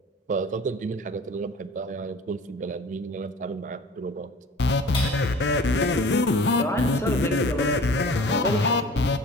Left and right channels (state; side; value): normal; both; correlation 0.43